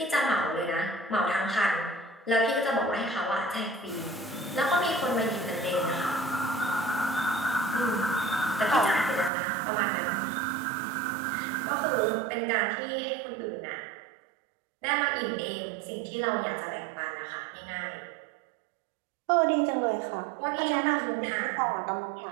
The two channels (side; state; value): left; drops out; at 9.3 s